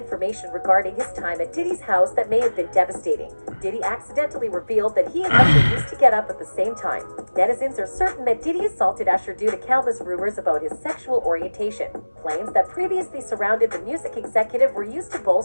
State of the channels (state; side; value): inverted; both; correlation -1.00